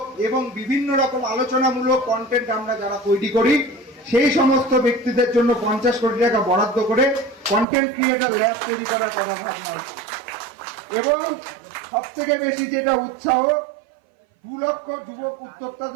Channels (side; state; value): left; drops out; at 7.7 s